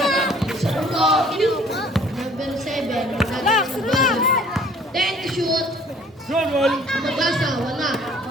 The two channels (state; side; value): normal; both; correlation 0.55